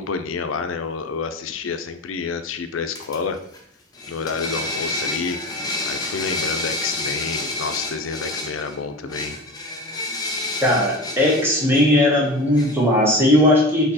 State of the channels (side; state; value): both; normal; correlation 0.30